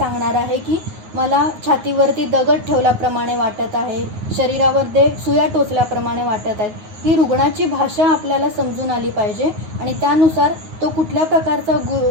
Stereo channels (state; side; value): late; left; 9.5 ms